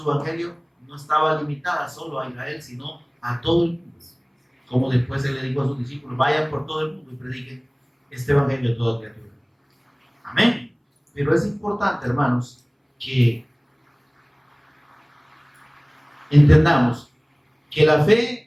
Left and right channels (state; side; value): identical; both; correlation 1.00